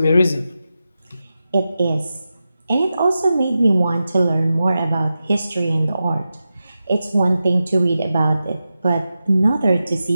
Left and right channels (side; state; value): both; inverted; correlation -0.92